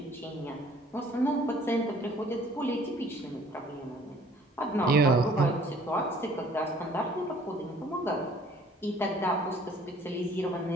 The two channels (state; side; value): normal; both; correlation 0.56